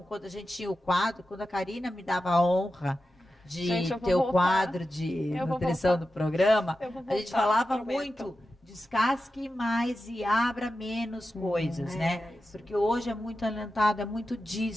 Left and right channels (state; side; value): normal; both; correlation 0.91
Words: quando a gente tinha o quadro, quando a Karina me dava a honra de Gente, eu vou ter o voltar. quadro de Eu vou nutrição voltar. do programa, Eu vou a gente voltar, falava prometo. muito, descasque mais e abra menos coisas, né? isso. Porque hoje é muito alentado, é muito